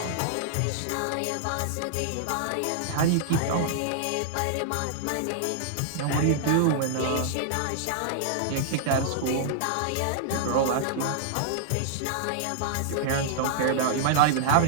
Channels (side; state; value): both; different; correlation -0.01